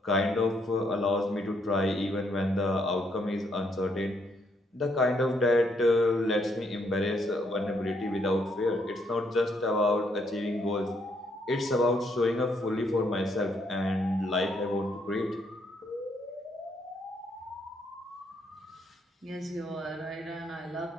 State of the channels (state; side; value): normal; both; correlation 0.72